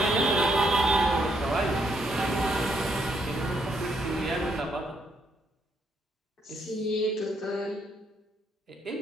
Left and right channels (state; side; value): normal; both; correlation 0.74